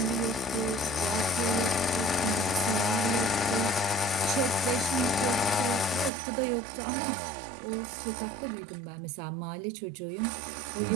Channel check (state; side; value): drops out; left; at 6.1 s